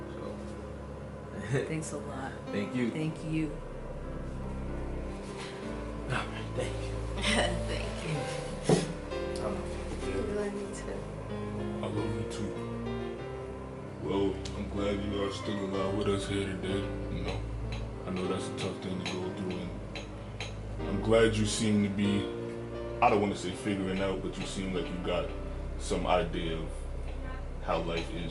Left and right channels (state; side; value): identical; both; correlation 1.00